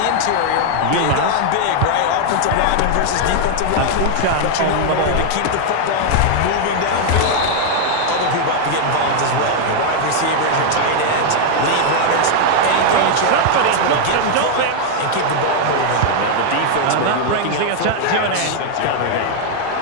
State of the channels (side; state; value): both; different; correlation 0.00